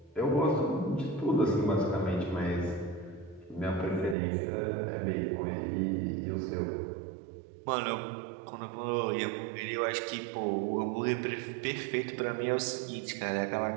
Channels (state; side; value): drops out; left; at 4.2 s